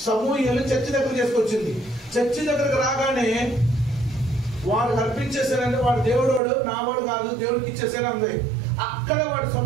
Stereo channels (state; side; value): drops out; left; at 6.4 s